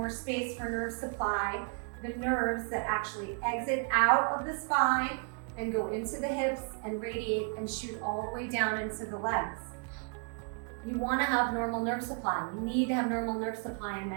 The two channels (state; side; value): quieter; left; 39.4 dB